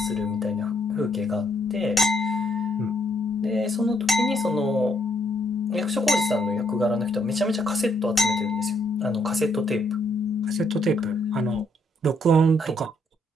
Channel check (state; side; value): normal; both; correlation 0.72